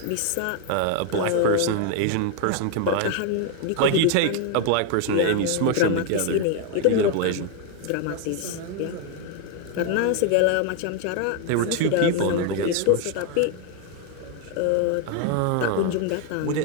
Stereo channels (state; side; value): different; both; correlation 0.01